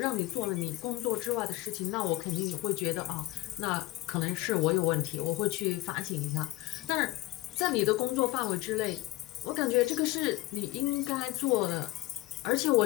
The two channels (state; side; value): quieter; right; 18.5 dB